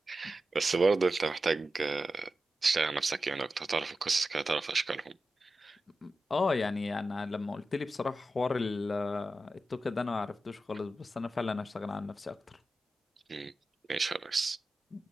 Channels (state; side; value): normal; both; correlation 0.92